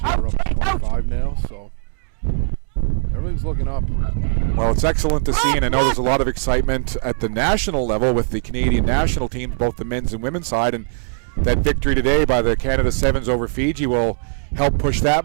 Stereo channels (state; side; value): silent; left; 66 dB below the other